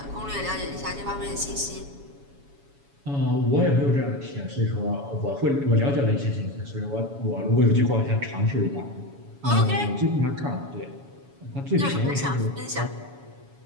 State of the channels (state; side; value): late; left; 7.1 ms